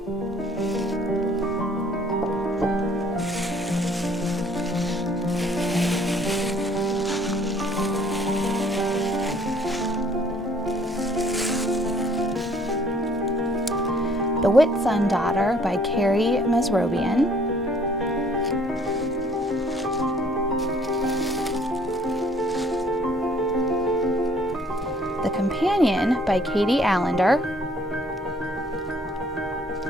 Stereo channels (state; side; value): normal; both; correlation 0.60